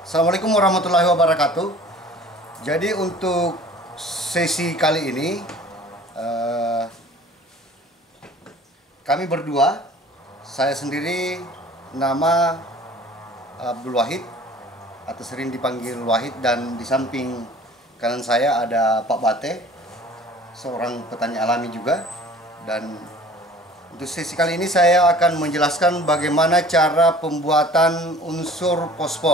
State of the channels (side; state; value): both; normal; correlation 0.47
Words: Assalamualaikum warahmatullahi wabarakatuh. Jadi untuk sesi kali ini kami berdua, saya sendiri nama Abdul Wahid atau sering dipanggil Wahid, dan di samping kanan saya ada Pak Bate, seorang petani alami juga. Dan untuk sesi kali ini saya akan menjelaskan bagaimana cara pembuatan unsur